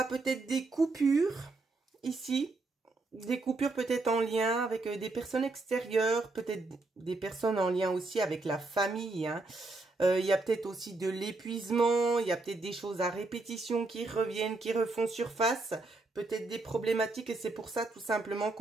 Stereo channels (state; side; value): quieter; left; 3.3 dB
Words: peut-être des coupures ici, des coupures peut-être en lien avec des personnes extérieures, peut-être des personnes en lien aussi avec la famille, hein. Il y a peut-être aussi de l'épuisement, il y a peut-être des choses à répétition qui reviennent, qui refont surface, peut-être des problématiques et c'est pour ça tout simplement